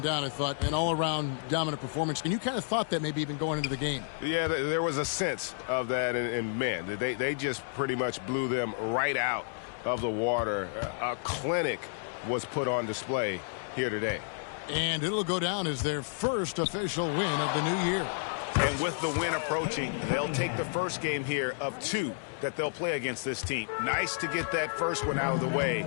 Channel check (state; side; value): silent; right; digital silence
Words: doubt, I thought, an all-around dominant performance. And you kind of thought that maybe even going into the game. Yeah, there was a sense of that, and man, they just pretty much blew them right out of the water. A clinic was put on display here today. And it'll go down as their first official win of the new year. And with the win approaching, they'll take the first game here of 2 that they'll play against this team. Nice to get that first one out of the way